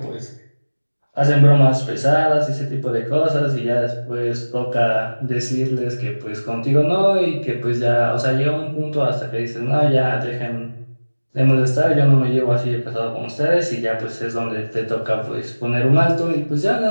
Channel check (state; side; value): inverted; both; correlation -1.00